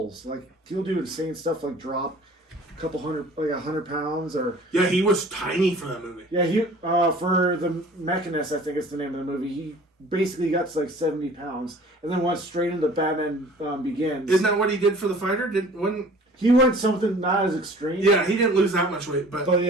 Like he'll do insane stuff like drop couple hundred, like 100 pounds, or Yeah, he was tiny for that movie. yeah, he for the Mechanist, I think is the name of the movie. He basically got to like 70 pounds, and then went straight into Batman Begins. Isn't that what he did for the fighter? He went something not as extreme. Yeah, he didn't lose that much weight, but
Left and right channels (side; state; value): both; normal; correlation 0.48